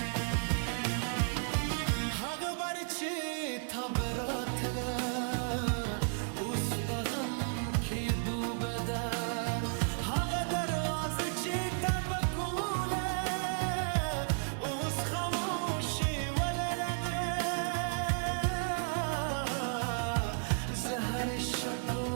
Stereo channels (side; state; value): left; silent; digital silence